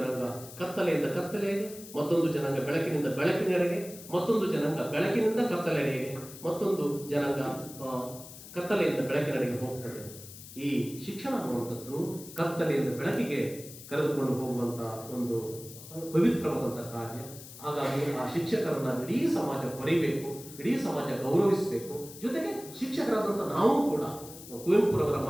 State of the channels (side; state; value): left; noise; hiss, 15 dB below the sound